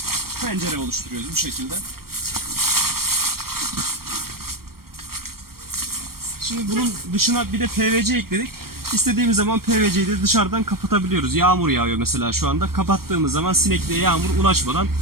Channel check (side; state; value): left; late; 0.94 ms